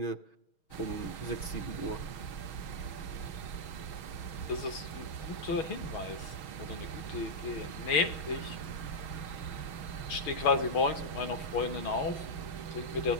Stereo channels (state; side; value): late; right; 6.3 ms